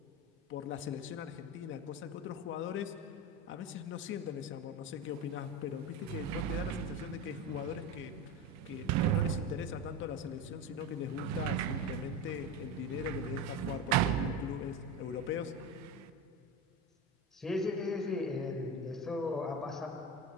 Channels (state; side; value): normal; both; correlation 0.22